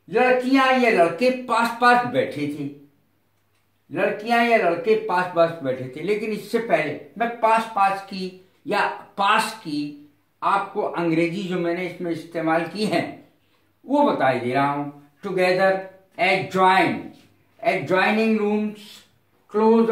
लड़कियां या लड़के पास पास बैठे थे, लड़कियां या लड़के पास पास बैठे थे। लेकिन इससे पहले मैं पास पास की या पास की आपको अंग्रेजी जो मैंने इसमें इस्तेमाल की है वो बता दे रहा हूं। Together, adjoin, adjoining rooms, close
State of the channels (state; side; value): identical; both; correlation 1.00